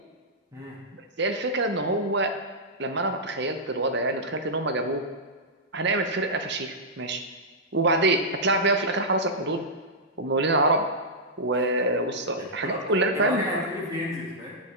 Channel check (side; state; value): both; normal; correlation -0.11